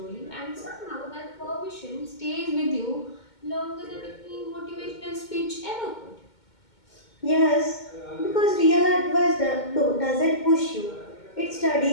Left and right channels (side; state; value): right; late; 2.2 ms